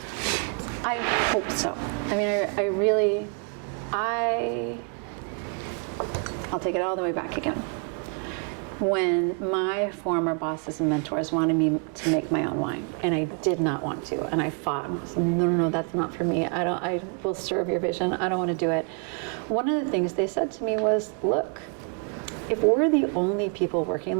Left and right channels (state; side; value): quieter; left; 38.7 dB